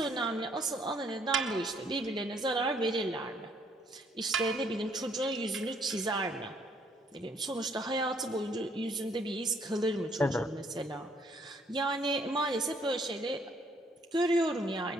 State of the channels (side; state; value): both; normal; correlation 0.66